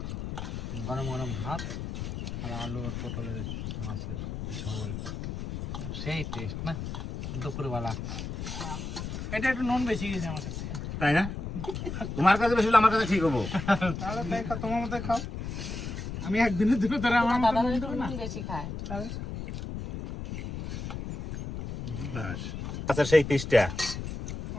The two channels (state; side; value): noise; left; rumble, 6 dB below the sound